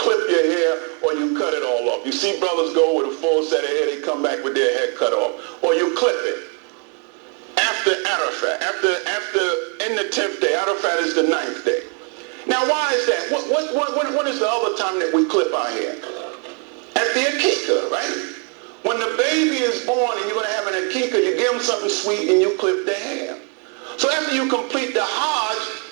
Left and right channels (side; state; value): left; quieter; 36.4 dB